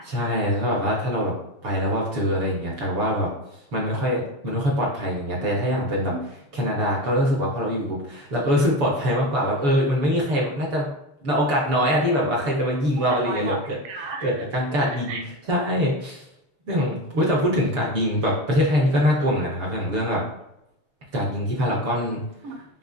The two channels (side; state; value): left; late; 7.0 ms